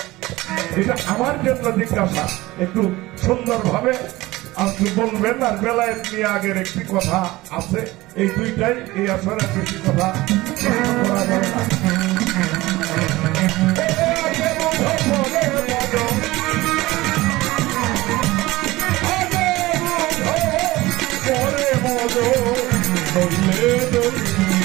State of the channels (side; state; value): left; quieter; 19.2 dB